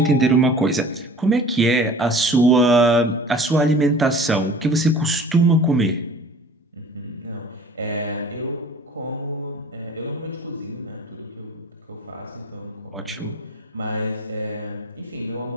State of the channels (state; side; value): normal; both; correlation 0.44